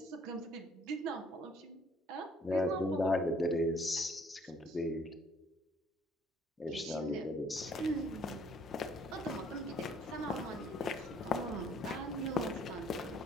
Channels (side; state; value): both; normal; correlation 0.60